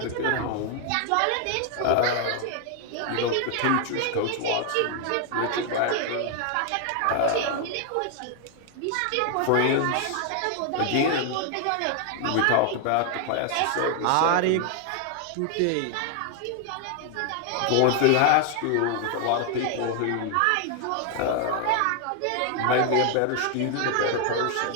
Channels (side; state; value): both; different; correlation 0.00